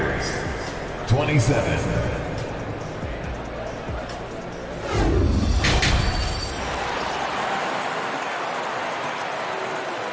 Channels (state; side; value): identical; both; correlation 1.00